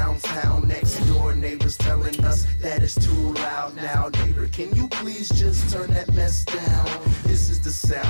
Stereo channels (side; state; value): both; inverted; correlation -1.00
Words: town. Next door neighbors telling us that it's too loud. Now neighbor, can you please just turn that mess down? This is the